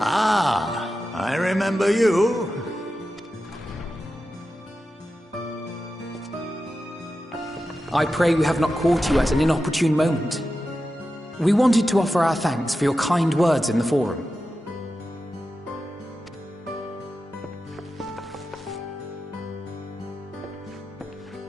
Ah, I remember you. I pray we have not caught you at an inopportune moment. We wanted to offer our thanks for your kind words in the forum.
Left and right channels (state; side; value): normal; both; correlation 0.91